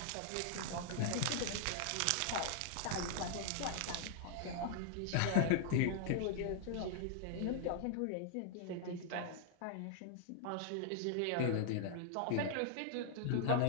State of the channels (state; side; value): different; both; correlation -0.01